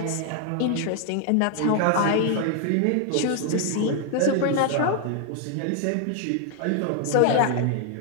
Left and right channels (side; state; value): both; different; correlation 0.00